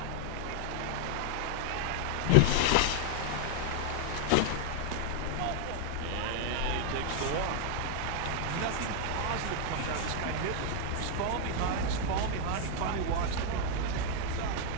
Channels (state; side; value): different; both; correlation 0.00